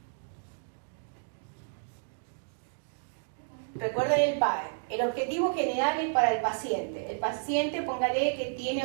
Recuerden el PAE. El objetivo general es para el paciente. El paciente, póngale que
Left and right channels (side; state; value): left; silent; digital silence